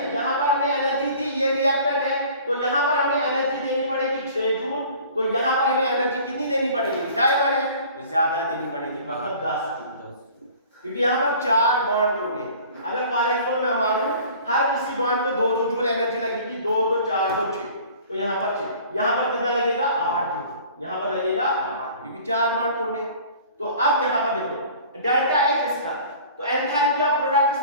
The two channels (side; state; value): both; inverted; correlation -0.47